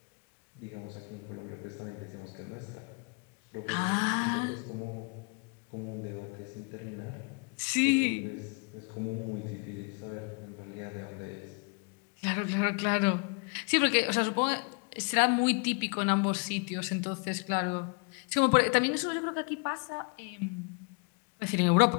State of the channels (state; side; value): quieter; right; 35.1 dB